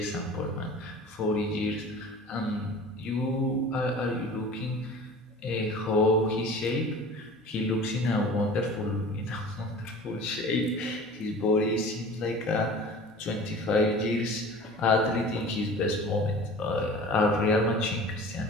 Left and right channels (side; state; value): both; normal; correlation 0.41